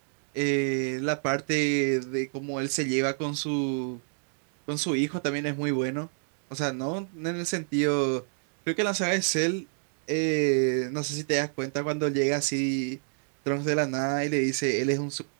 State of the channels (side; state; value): left; silent; 59 dB below the other